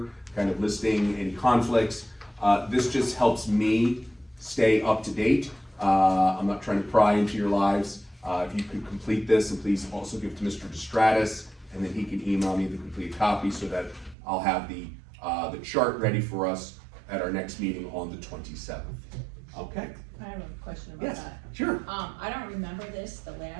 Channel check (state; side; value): drops out; left; at 14.2 s